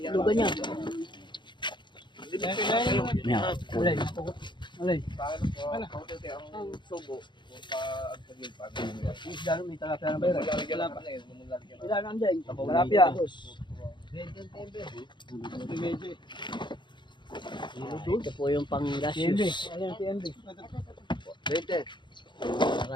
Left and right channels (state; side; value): late; right; 0.22 ms